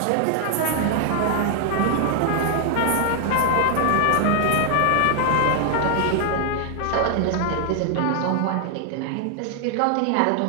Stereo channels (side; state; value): both; different; correlation 0.00